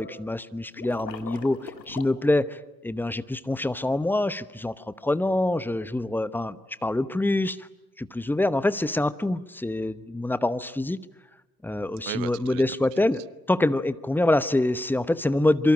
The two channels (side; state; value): both; normal; correlation 0.90